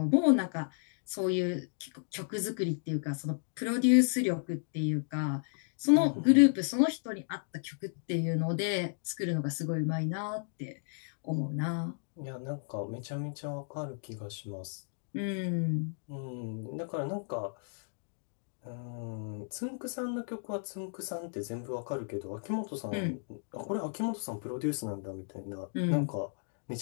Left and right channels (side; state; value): right; silent; digital silence